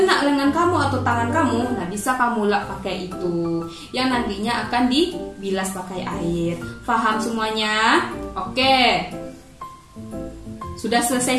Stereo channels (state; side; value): identical; both; correlation 1.00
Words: lengan kamu atau tangan kamu, nah bisa kamu lap pakai itu yang nantinya akan dibilas pakai air. Paham semuanya? Oke. Sudah selesai